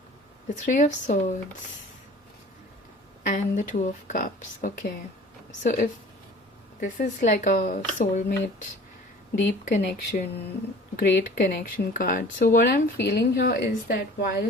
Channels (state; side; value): normal; both; correlation 0.46